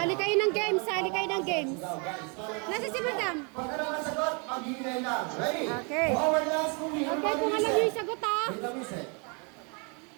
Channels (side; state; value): left; quieter; 35.0 dB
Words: kayo ng games, sali kayo ng games. Sigaw, guys. Nasa si Madam. Pag ano ang sagot, mag-iingay lang. Ready? Okay. Forward last kung hindi Okay, kung alam niyo yung sagot ha. Wait a minute.